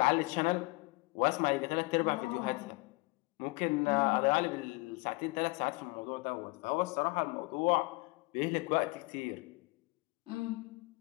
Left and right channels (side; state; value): right; quieter; 26.2 dB